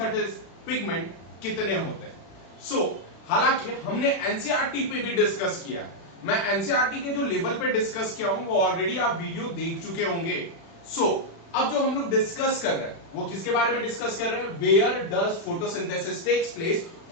pigment कितने होते हैं। हालांकि हमने एनसीईआरटी पे भी डिस्कस किया। मैं एनसीईआरटी के जो लेवल पे डिस्कस किया हूं वो ऑलरेडी आप वीडियो देख चुके होंगे। अब जो हम लोग डिस्कस कर रहे हैं वो किसके बारे में डिस्कस कर रहे हैं, where does photosynthesis takes place.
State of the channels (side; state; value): right; late; 36 ms